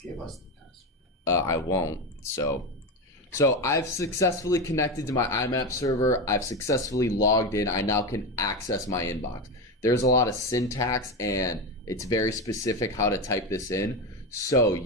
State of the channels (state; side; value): normal; both; correlation 0.17